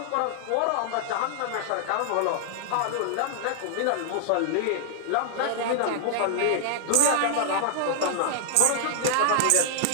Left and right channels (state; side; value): different; both; correlation -0.01